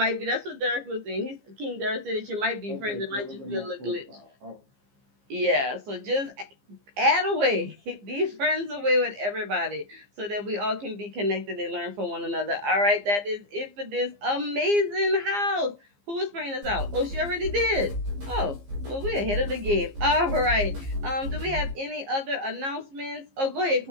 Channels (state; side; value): late; left; 15 ms